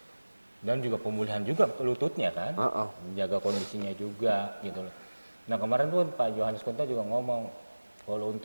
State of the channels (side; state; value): both; inverted; correlation -1.00